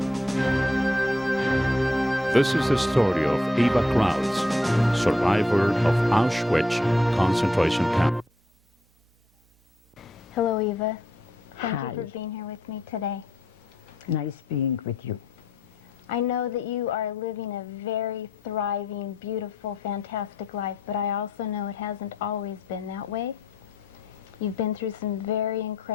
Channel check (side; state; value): both; normal; correlation 0.74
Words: This is the story of Eva Krause, survivor of Auschwitz concentration camp. Hello, Eva. Thank Hi. you for being here with me today. Nice being with you. I know that you are living a very thriving, beautiful, fantastic life, but I also know it hasn't always been that way. You've been through some very